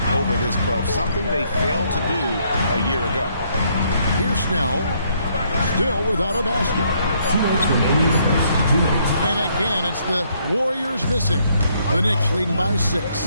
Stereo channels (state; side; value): inverted; both; correlation -0.70